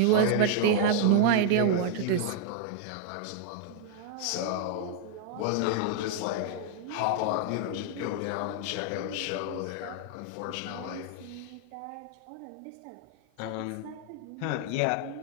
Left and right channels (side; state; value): both; different; correlation 0.00